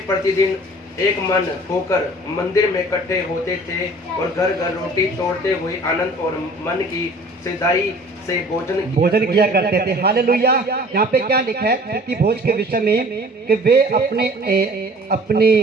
प्रतिदिन एक मन होकर मंदिर में इकट्ठे होते थे और घर घर रोटी तोड़ते हुए आनंद और मन की सिधाई से भोजन किया करते थे। हालेलुया। यहाँ पे क्या लिखा है प्रीति भोज के विषय में कि वे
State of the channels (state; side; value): normal; both; correlation 0.48